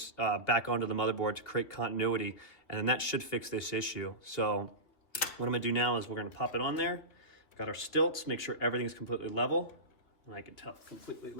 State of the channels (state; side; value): late; right; 2.9 ms